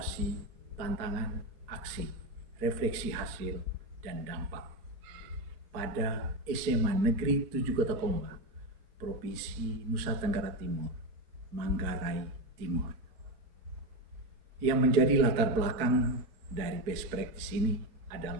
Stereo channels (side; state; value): left; late; 4.5 ms